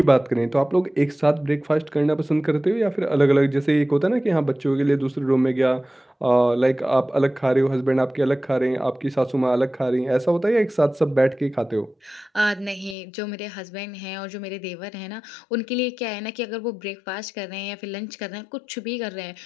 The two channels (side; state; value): right; drops out; at 13.0 s